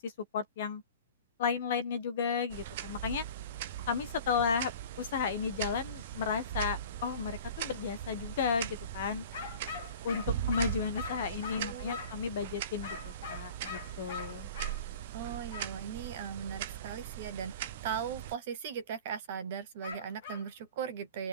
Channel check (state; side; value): inverted; both; correlation -0.41